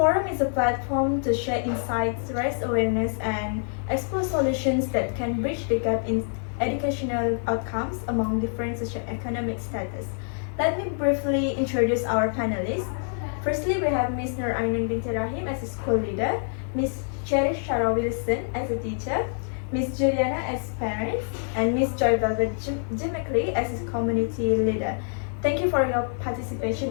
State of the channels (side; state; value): right; silent; 61 dB below the other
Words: is a platform to share insights, raise awareness, and explore solutions that can bridge the gap in educational outcomes among different socioeconomic status. Let me briefly introduce our panelists. Firstly, we have Ms. Nur Ainun binti Rahim as a school leader, Ms. Cherish Shara Wilson as a teacher, Ms. Juliana as parents, and Ms. Joy Velvet Jimickley as a community leader. Thank you for your participation